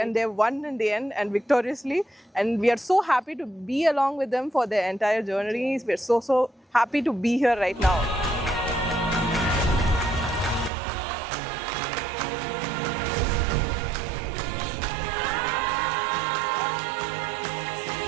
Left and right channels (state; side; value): drops out; left; at 10.7 s